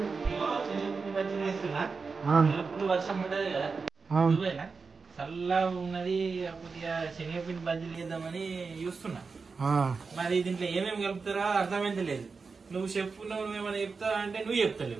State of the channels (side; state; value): left; quieter; 4.7 dB